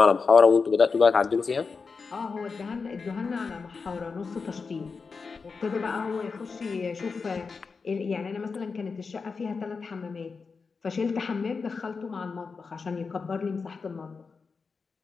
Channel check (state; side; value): quieter; right; 4.9 dB